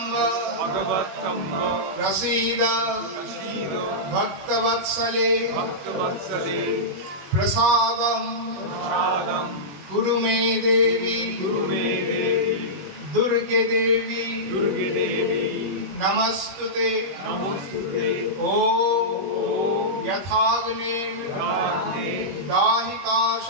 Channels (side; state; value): left; late; 21 ms